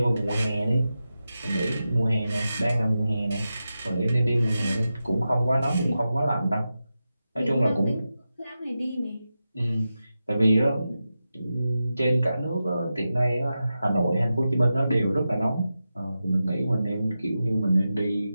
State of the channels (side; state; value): both; inverted; correlation -0.91